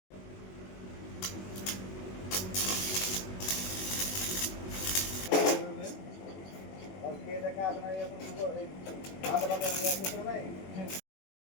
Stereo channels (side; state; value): right; late; 21 ms